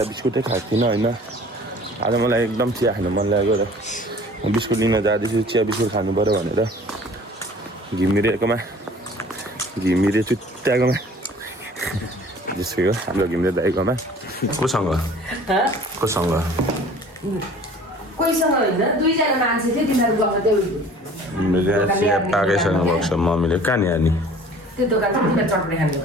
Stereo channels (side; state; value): both; normal; correlation 0.48